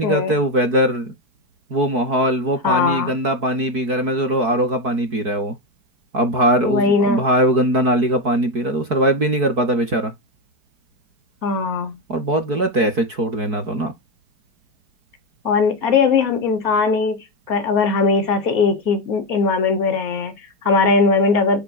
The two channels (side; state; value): left; late; 4.6 ms